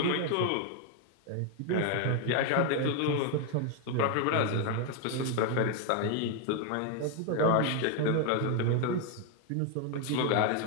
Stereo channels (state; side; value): different; both; correlation 0.01